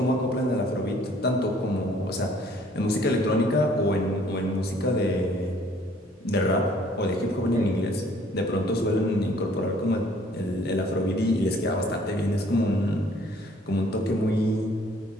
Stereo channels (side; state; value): both; normal; correlation 0.58